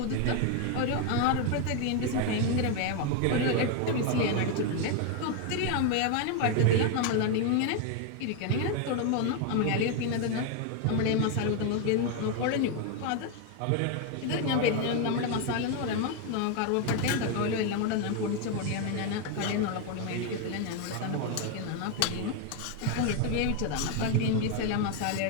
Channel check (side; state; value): both; different; correlation 0.01